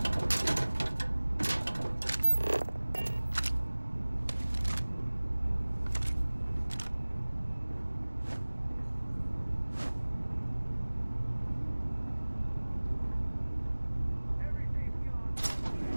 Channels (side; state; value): both; inverted; correlation -1.00